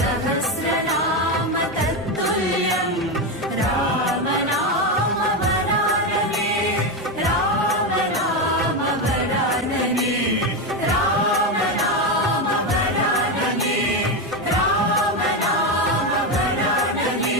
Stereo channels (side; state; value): both; normal; correlation 0.12